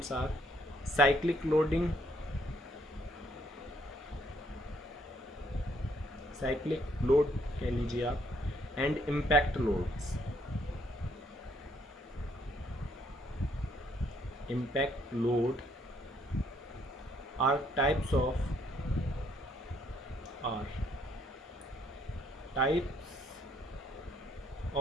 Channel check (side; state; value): both; normal; correlation 0.68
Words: are cyclic loading, cyclic load कह लीजिए आप, and impact loads. Impact load are types of are types